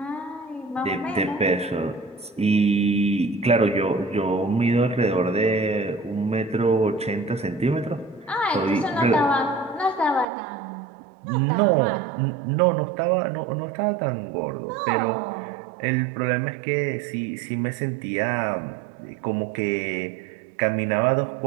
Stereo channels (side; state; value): left; drops out; at 10.2 s